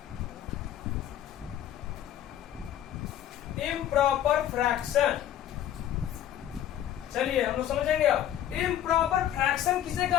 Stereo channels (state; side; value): quieter; right; 11.3 dB